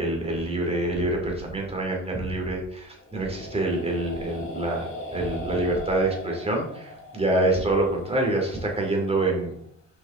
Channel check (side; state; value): both; normal; correlation 0.36